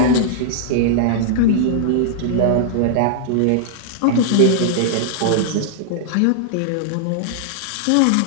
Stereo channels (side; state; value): both; different; correlation -0.01